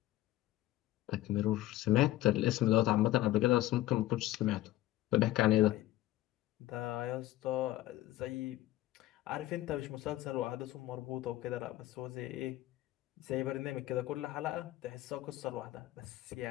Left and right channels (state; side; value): quieter; right; 15.5 dB